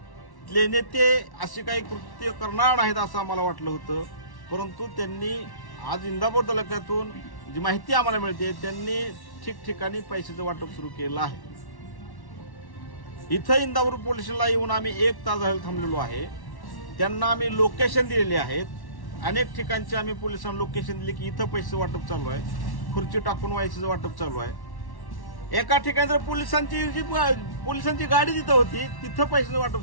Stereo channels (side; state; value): right; late; 1.1 ms